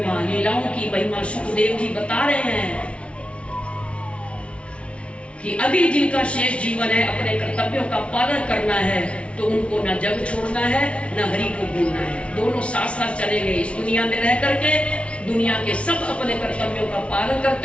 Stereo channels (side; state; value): right; late; 0.061 ms